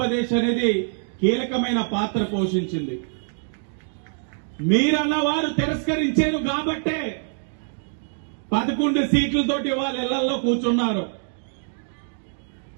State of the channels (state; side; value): silent; left; digital silence